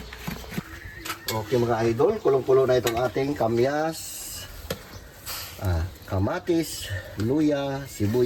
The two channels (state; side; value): identical; both; correlation 1.00